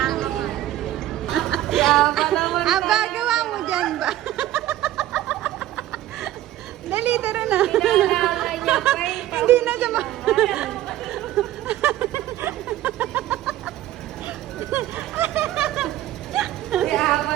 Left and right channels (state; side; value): quieter; left; 13.9 dB